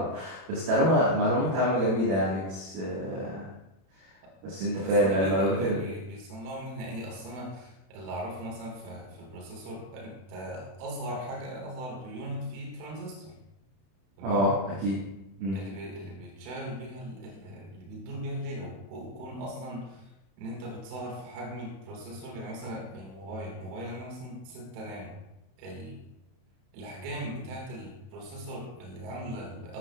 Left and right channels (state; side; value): late; left; 31 ms